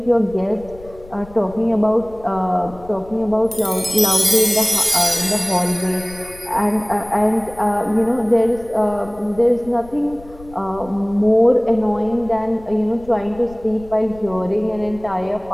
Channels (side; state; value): left; noise; rumble, 20 dB below the sound